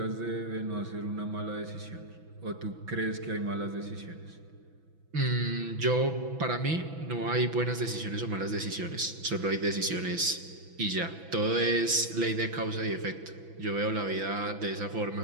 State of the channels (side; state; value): left; late; 6.0 ms